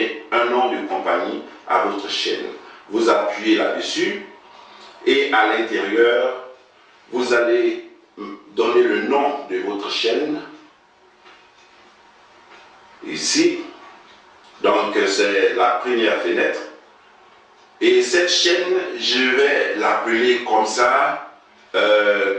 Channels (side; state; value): both; identical; correlation 1.00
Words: un nom de compagnie à votre chaîne. Vous appuyez là-dessus et à l'intérieur, vous allez donner le nom de votre chaîne. Ici, donc c'est la première fenêtre. Et cette chaîne, je vais l'appeler comme ça,